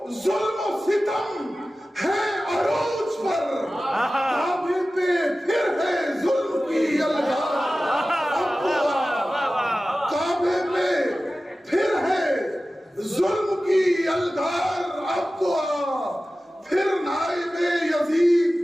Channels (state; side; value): normal; both; correlation 0.96